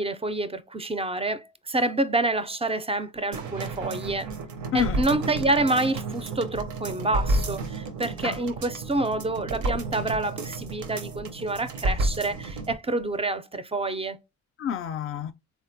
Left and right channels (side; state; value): both; normal; correlation 0.28